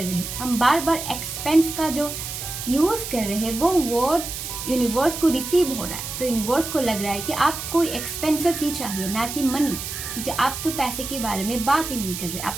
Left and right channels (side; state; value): right; noise; hiss, 7 dB below the sound